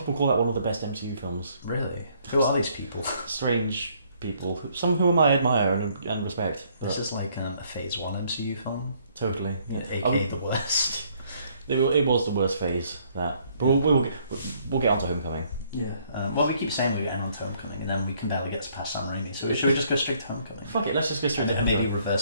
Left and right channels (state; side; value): inverted; both; correlation -0.65